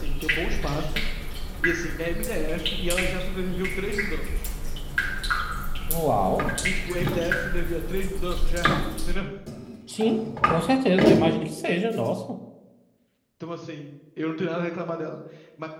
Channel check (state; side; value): identical; both; correlation 1.00